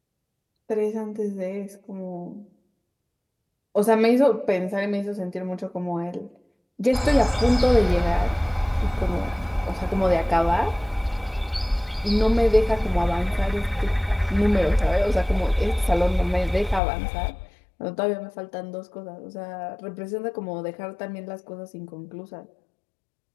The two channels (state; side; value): drops out; right; at 16.8 s